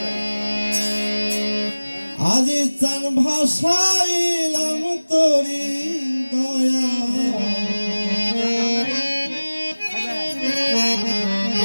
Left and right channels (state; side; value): inverted; both; correlation -1.00